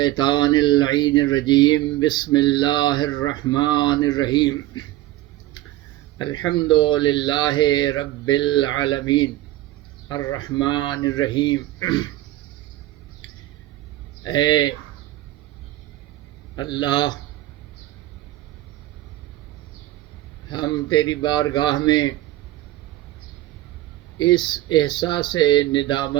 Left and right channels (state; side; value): quieter; left; 15.8 dB